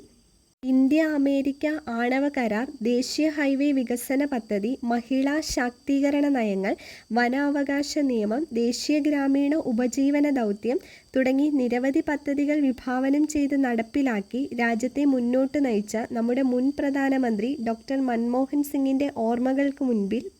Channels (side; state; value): both; identical; correlation 1.00